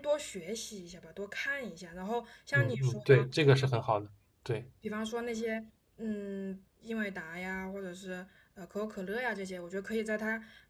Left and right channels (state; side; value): identical; both; correlation 1.00